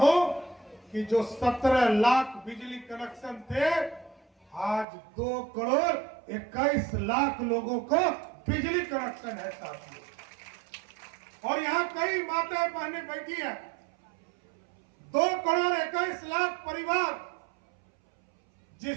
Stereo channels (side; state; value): left; drops out; at 4.9 s